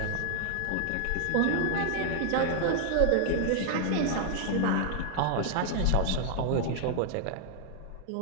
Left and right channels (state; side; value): different; both; correlation 0.00